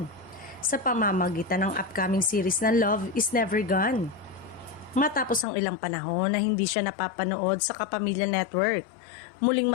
sa pamamagitan ng upcoming series na Love is Never Gone. Matapos ang ilang panahon na hindi siya napapanood sa Kapamilya Network, muling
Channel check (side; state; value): right; drops out; at 5.5 s